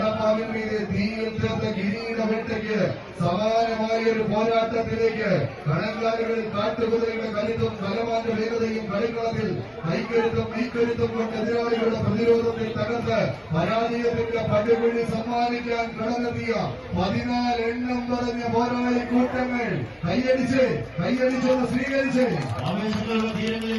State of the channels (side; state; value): both; identical; correlation 1.00